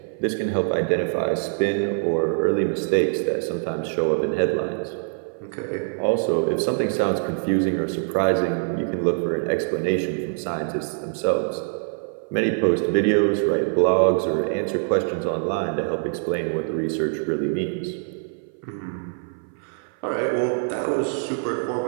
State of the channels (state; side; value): silent; left; 57 dB below the other